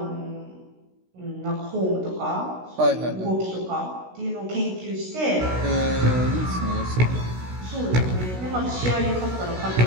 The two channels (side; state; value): left; late; 16 ms